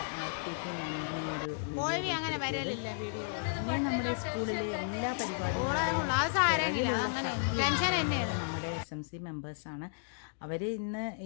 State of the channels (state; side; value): silent; right; digital silence